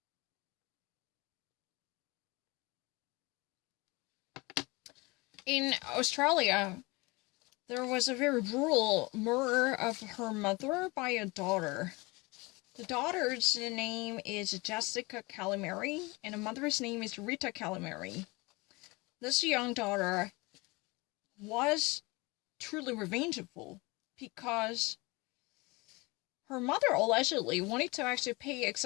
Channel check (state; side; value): quieter; right; 24.8 dB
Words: In Australia, there was a very brutal murder of her mother by a daughter. The daughter's name is Jessica Calamari, and the mother's name is Rita Calamari. This young daughter was truly revengeful because her mother allegedly wanted to actually pay